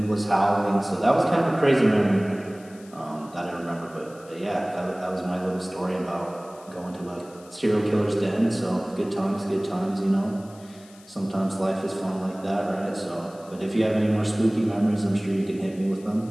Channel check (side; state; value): left; noise; hiss, 25 dB below the sound